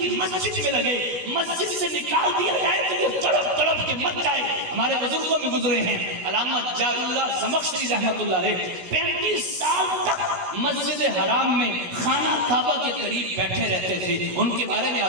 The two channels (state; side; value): late; left; 16 ms